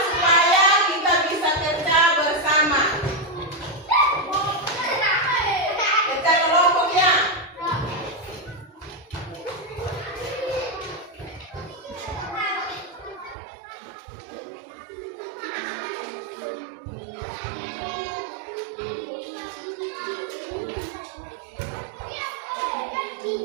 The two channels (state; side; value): drops out; left; at 13.4 s